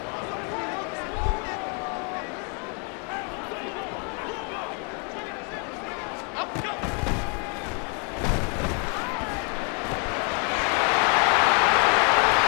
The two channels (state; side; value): quieter; right; 35.5 dB